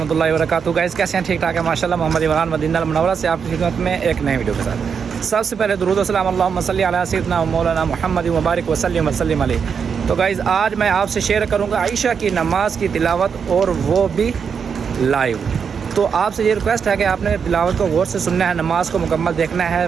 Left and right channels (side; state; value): left; quieter; 6.5 dB